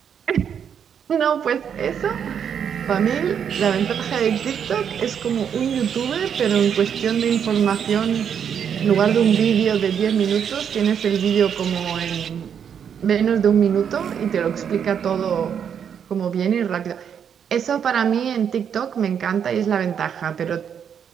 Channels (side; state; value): left; quieter; 7.9 dB